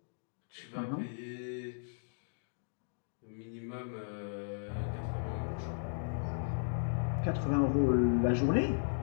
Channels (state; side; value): silent; right; digital silence